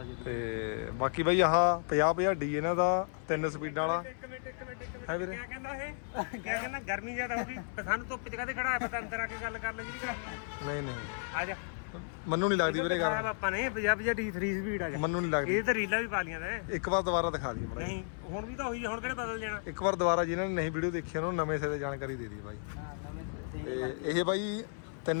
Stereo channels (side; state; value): right; silent; 55 dB below the other